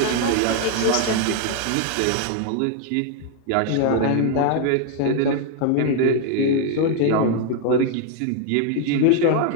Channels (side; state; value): both; different; correlation 0.00